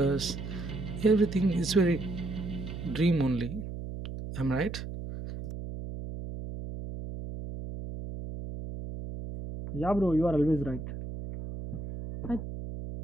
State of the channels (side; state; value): right; noise; hum, 8 dB below the sound